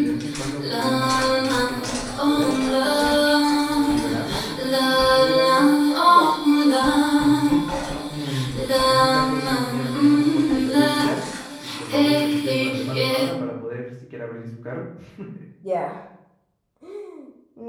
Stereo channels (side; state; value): both; identical; correlation 1.00